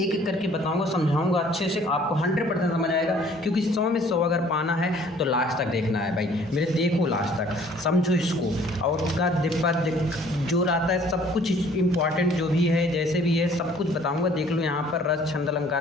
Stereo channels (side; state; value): both; normal; correlation 0.56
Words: एक करके बताऊंगा, समझाऊंगा अच्छे से, आपको 100% समझ आएगा। क्योंकि 100 में 100 अगर पाना है तो लास्ट तक देखना है भाई मेरे, देखो लास्ट तक, समझो इसको। और का दिप्पद जो आता है सब कुछ इंपॉर्टेंट जो भी है, जैसे भी है सब कुछ बताऊंगा। देख लो यहाँ पर रस छंद